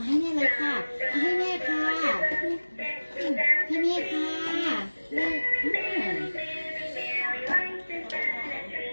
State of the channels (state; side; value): inverted; both; correlation -1.00